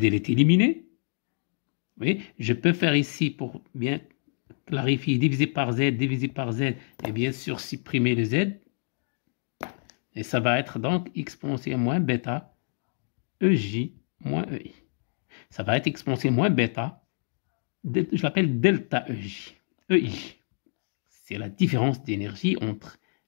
est éliminé. Oui, je peux faire ici, pour bien clarifier, diviser par Z, et bien sûr supprimer le Z. Et ça va être donc exponentielle moins bêta EJ moins EI. Ça va être exponentielle moins bêta, je l'appelle delta EJ. EI. C'est la différence d'énergie entre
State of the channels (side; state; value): right; silent; digital silence